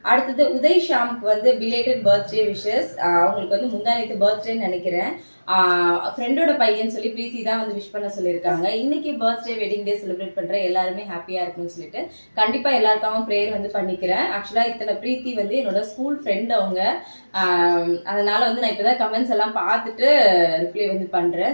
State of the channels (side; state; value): both; inverted; correlation -1.00